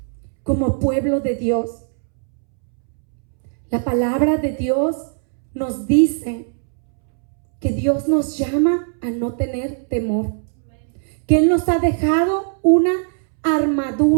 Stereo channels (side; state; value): left; silent; 66 dB below the other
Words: como pueblo de Dios? La palabra de Dios nos dice que Dios nos llama a no tener temor, que Él nos ha dejado una